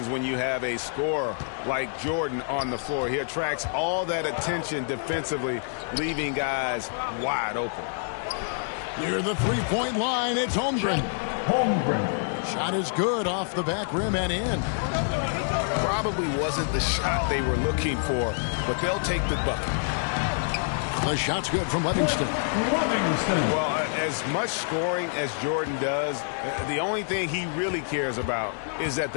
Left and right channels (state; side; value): silent; right; 60 dB below the other